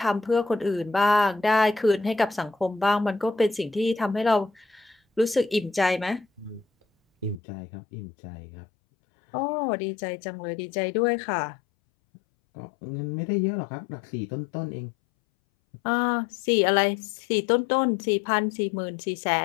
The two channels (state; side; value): drops out; right; at 7.4 s